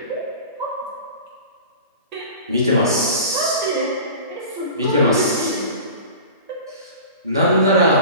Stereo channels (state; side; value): inverted; both; correlation -0.37